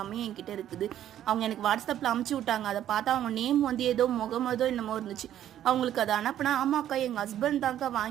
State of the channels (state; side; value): quieter; left; 11.4 dB